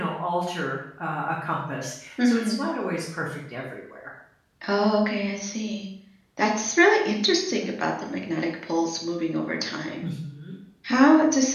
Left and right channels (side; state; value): both; identical; correlation 1.00